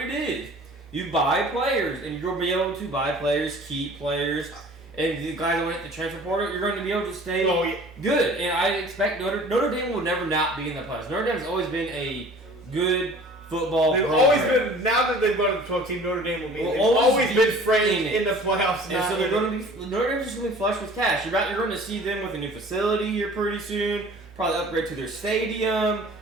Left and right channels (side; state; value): both; normal; correlation 0.47